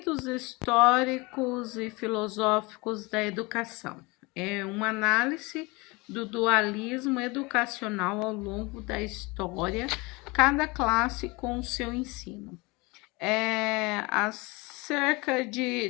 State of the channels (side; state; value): right; quieter; 25.4 dB